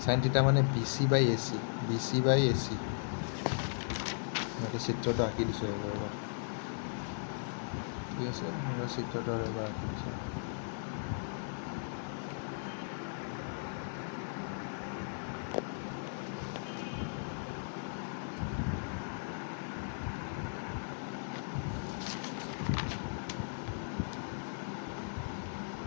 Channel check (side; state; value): right; silent; digital silence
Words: সাইন থিটা মানে BC/AC মই চিত্ৰটো আঁকি দিছোঁ এবাৰ ঠিক আছে মই চিত্ৰটো এবাৰ আঁকি দিছোঁ